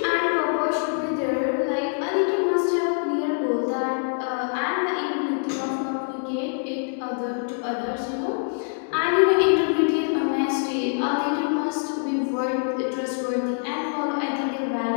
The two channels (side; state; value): right; silent; 61 dB below the other